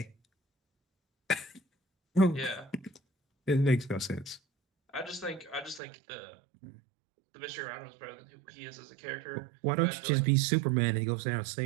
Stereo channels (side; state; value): left; drops out; at 5.8 s